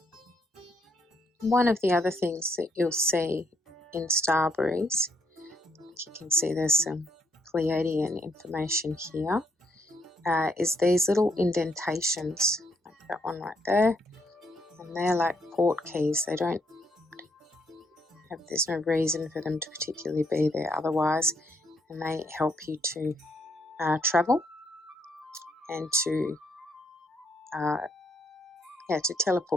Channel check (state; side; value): normal; both; correlation 0.72